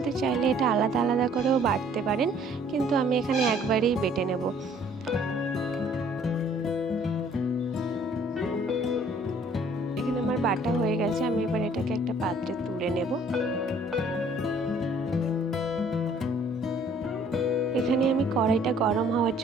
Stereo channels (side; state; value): both; normal; correlation 0.58